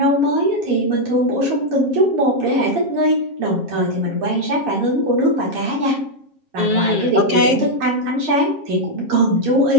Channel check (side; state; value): left; late; 7.4 ms